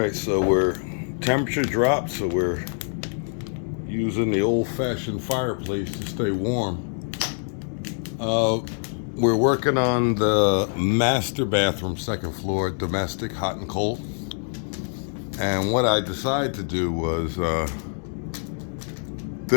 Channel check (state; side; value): silent; right; 61 dB below the other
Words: so temperature dropped, so we're using the old-fashioned fireplace to stay warm. We're working on the master bathroom, second floor, domestic, hot and cold. And what I decided to do was